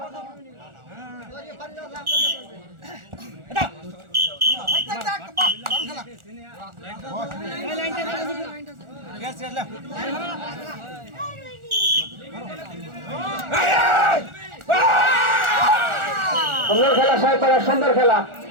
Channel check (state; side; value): late; left; 1.4 ms